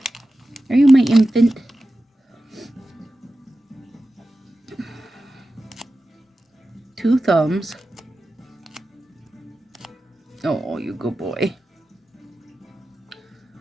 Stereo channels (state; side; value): normal; both; correlation 0.93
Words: you my infant? Two thumbs. Oh, you good boy.